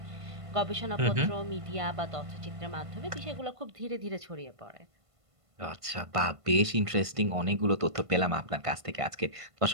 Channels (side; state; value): left; late; 1.5 ms